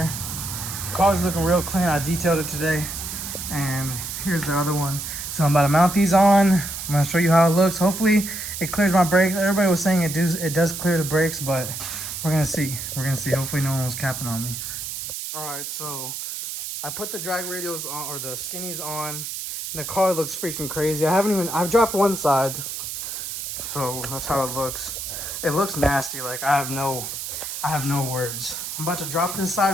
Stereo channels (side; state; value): right; noise; hiss, 6 dB below the sound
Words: Car's looking real clean. I detailed it today. And here's the other one. So I'm about to mount these on. I'm gonna show you how it looks. Hopefully it clears my brakes. Everybody was saying it does clear the brakes, but we're gonna see. We're gonna see. Hopefully no one was capping on me. All right, so I put the drag radials on, or the skinnies on, and the car looks freaking crazy. I've dropped one side, so that's how it looks. It looks nasty. Like I have no words. I'm about to drop this